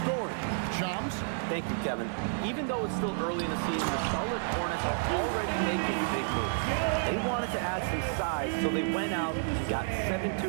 story. Shams? Thank you, Kevin. Even though it's still early in the season, the Charlotte Hornets are already making big moves. They wanted to add some size, so they went out and got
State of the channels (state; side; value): silent; left; digital silence